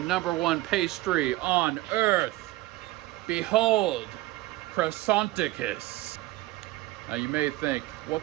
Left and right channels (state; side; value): quieter; left; 18.0 dB